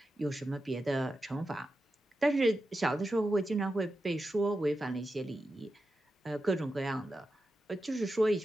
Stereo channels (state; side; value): normal; both; correlation 0.90